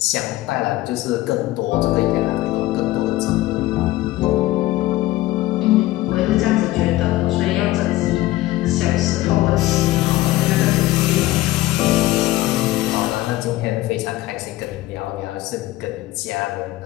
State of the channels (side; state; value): right; quieter; 16.8 dB